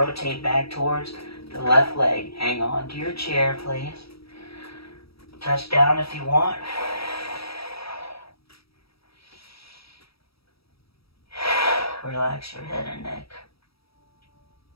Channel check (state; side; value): late; right; 0.76 ms